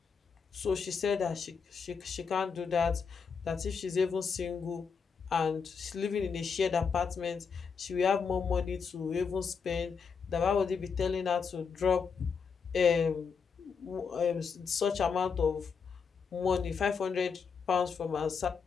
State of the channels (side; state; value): right; quieter; 5.8 dB